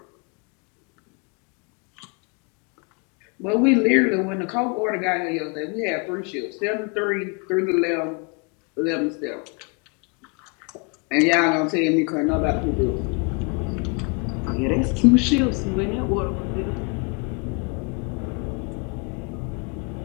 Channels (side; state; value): right; quieter; 33.1 dB